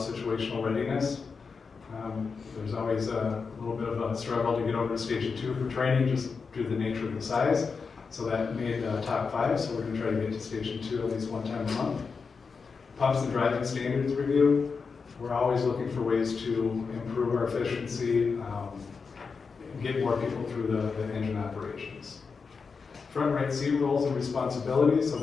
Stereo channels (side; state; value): right; quieter; 5.1 dB